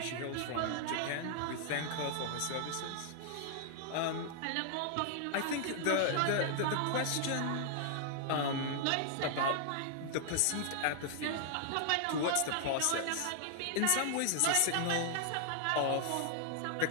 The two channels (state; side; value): different; both; correlation 0.00